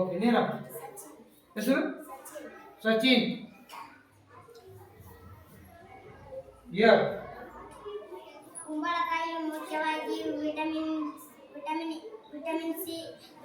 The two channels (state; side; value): identical; both; correlation 1.00